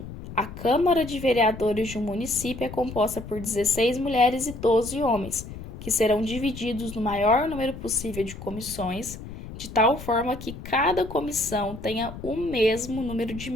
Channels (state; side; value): noise; left; rumble, 12 dB below the sound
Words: a Câmara de Vereadores de um município é composta por 16 mulheres e 12 homens, que serão divididos no maior número possível de comissões, de tal forma que cada comissão tenha o mesmo número de